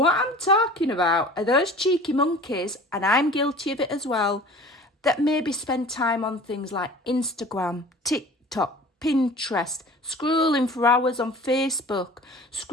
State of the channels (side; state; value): both; normal; correlation 0.43